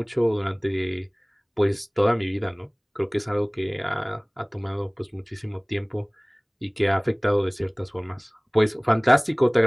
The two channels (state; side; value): identical; both; correlation 1.00